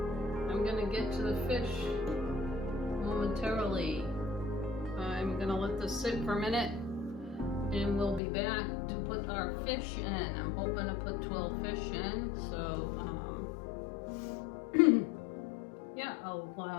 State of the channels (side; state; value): right; drops out; at 8.2 s